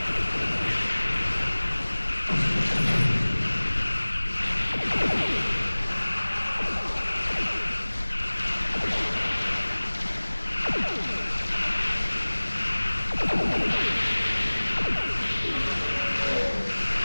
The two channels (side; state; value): both; inverted; correlation -1.00